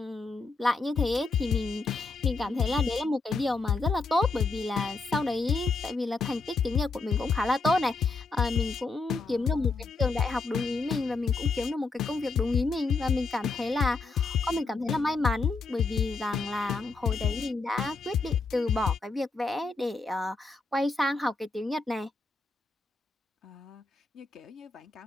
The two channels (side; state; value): right; quieter; 3.9 dB